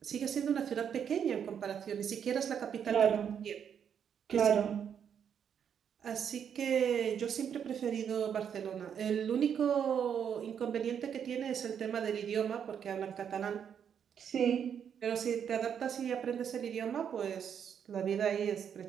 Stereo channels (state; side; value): quieter; left; 8.1 dB